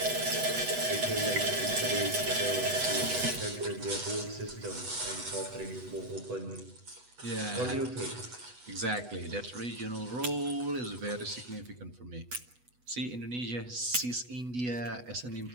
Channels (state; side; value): late; left; 8.1 ms